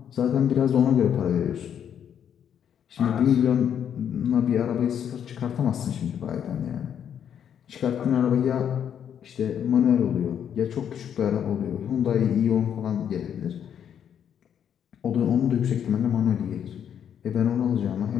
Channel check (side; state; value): right; quieter; 8.8 dB